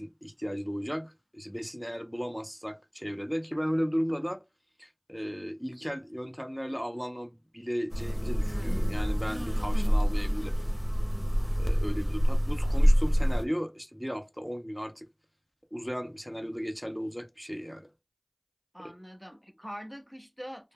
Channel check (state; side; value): identical; both; correlation 1.00